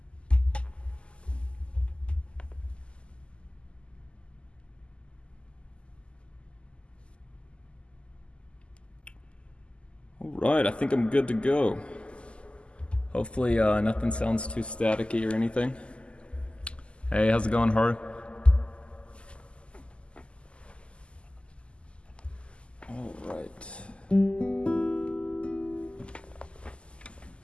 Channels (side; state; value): right; late; 0.053 ms